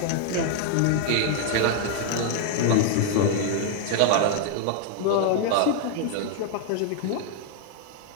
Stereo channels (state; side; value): different; both; correlation 0.00